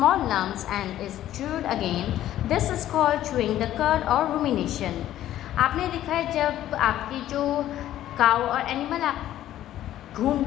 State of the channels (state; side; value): quieter; right; 12.8 dB